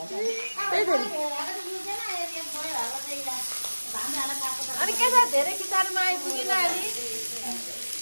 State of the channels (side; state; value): both; inverted; correlation -1.00